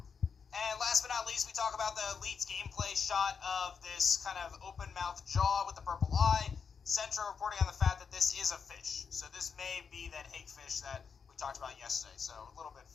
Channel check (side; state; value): right; quieter; 6.1 dB